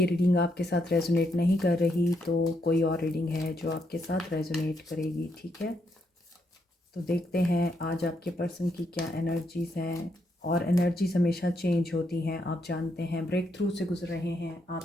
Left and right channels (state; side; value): normal; both; correlation 0.78